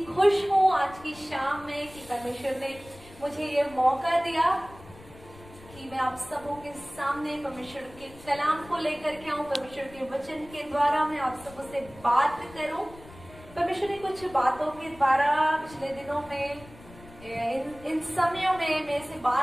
खुश हूँ आज की शाम में कि परमेश्वर ने मुझे ये मौका दिया कि मैं आप सबों के सामने परमेश्वर के कलाम को लेकर के आऊं, परमेश्वर के वचन के द्वारा मैं आप सबों से बात करूं। परमेश्वर ने कुछ बातों के द्वारा पिछले दिनों में इन समयों में मेरे से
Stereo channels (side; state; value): left; noise; rumble, 20 dB below the sound